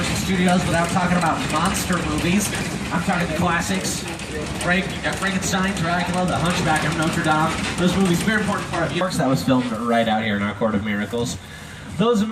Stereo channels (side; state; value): both; identical; correlation 1.00